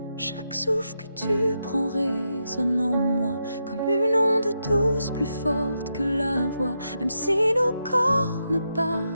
Chaque souffle que tu prends résonne en moi comme une onde douce plus forte que la voix. Même si nos corps ne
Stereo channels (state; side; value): inverted; both; correlation -0.84